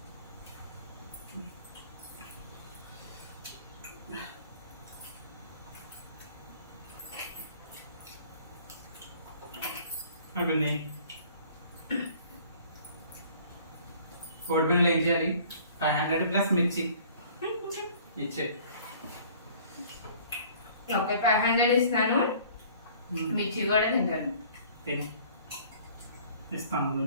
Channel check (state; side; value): inverted; both; correlation -0.53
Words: అయిపోయింది. కోడి పిల్లలు ఏం చేయాలి? 500 ప్లస్ మిర్చి ఇచ్చే. ఓకే, 500 ఇస్తాను, మిర్చి కూడా తింటాను. ఇస్తాను